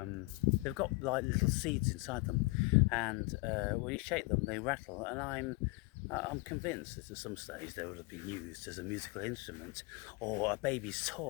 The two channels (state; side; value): quieter; right; 26.4 dB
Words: got like little seeds inside them, and when you shake them they rattle, and I'm convinced that at some stage they would have been used as a musical instrument or a baby's